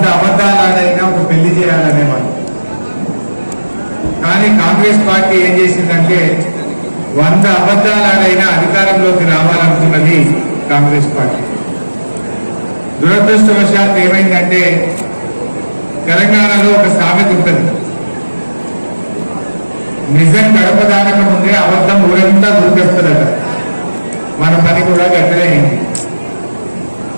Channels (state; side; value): inverted; both; correlation -1.00